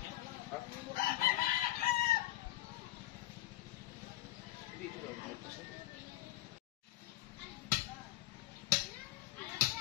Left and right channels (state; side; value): quieter; right; 15.5 dB